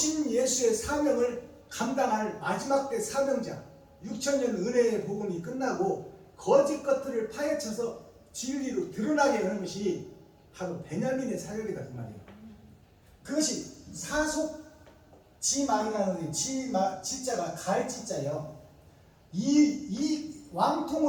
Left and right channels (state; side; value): identical; both; correlation 1.00